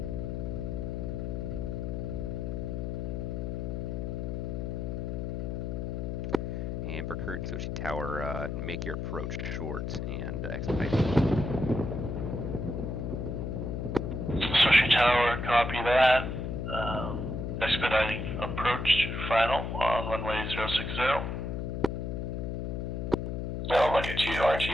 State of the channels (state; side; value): noise; left; hum, 3 dB below the sound